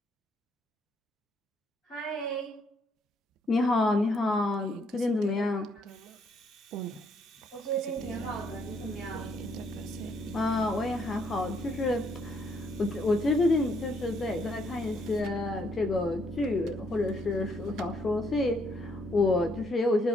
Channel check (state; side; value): normal; both; correlation 0.71